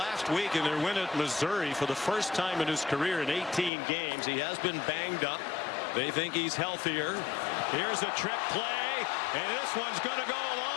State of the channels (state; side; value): drops out; right; at 3.7 s